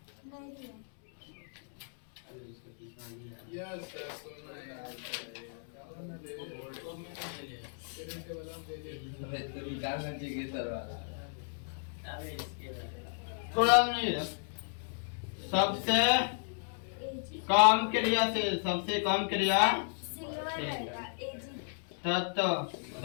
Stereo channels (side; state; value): right; silent; digital silence